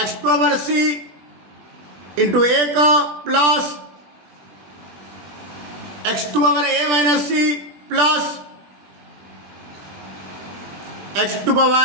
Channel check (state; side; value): late; left; 20 ms